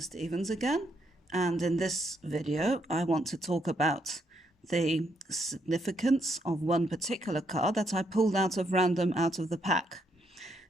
Stevens again, and in this video I want to talk about the significance of one particular card that I pulled out of random out of the pack.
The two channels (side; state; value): both; normal; correlation 0.75